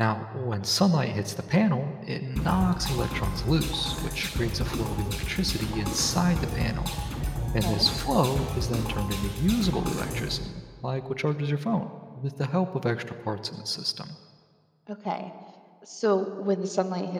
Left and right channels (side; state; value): both; identical; correlation 1.00